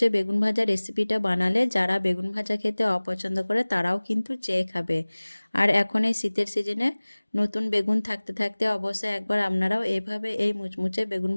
বেগুন ভাজা রেসিপিটা বানালে যারা বেগুন ভাজা খেতে অপছন্দ করে তারাও কিন্তু চেয়ে খাবে। আর এখন এই শীতের সিজনে নতুন বেগুন থাকতে থাকতে অবশ্যই একবার আপনারাও এভাবে এই মুচমুচে বেগুন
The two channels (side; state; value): both; inverted; correlation -1.00